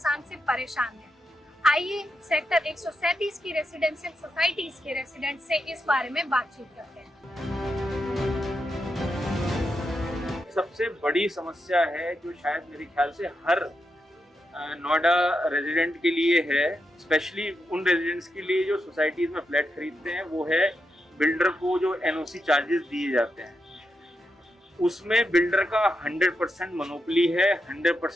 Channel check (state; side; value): normal; both; correlation 0.86